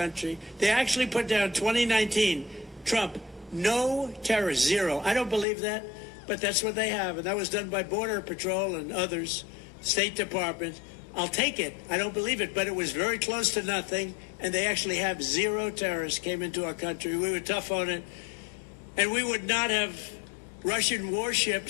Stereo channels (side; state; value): right; drops out; at 5.5 s